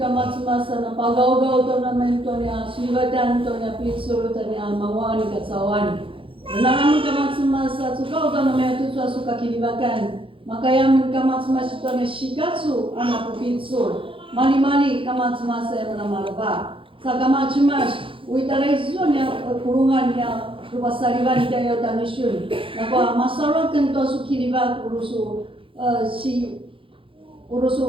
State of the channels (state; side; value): late; left; 0.25 ms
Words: masa na pagaw-gaw tornamento niya sibatan to niya pitsuro to niya mawani katsawani. Namun kamas masa suka tornamento to suka kilibakan. Makayam kamas masa to niya shikatsu anak pitsur. Mali-mali kamas masa yang namarba. Sa kamas mas uitaraizon niya kurungan niya Rupasariban tayo tanisyon. Nako masarap kanto su kiriba urusu